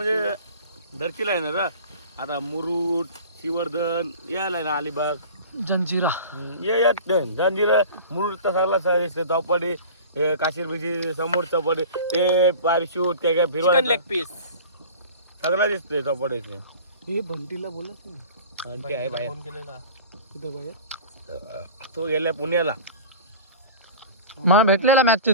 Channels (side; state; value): both; inverted; correlation -0.40